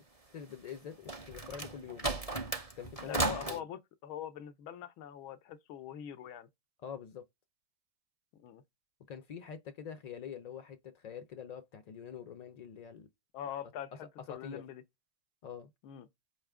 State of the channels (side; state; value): right; late; 1.7 ms